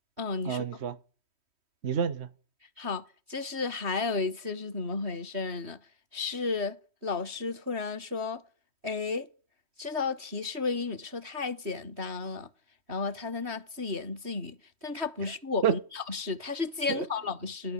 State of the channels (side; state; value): left; late; 3.1 ms